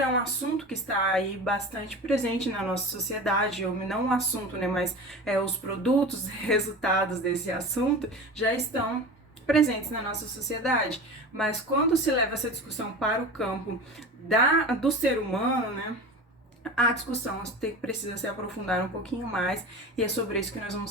é um assunto que está aí bastante presente na nossa sociedade, ou não um assunto, né, mas os produtos, resultados desse assunto já estão presentes na nossa sociedade. Mas quando se leva essa discussão para o campo do ser humano, né, a discussão precisa se aprofundar um pouquinho mais, e é sobre isso que nós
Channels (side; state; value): both; normal; correlation 0.32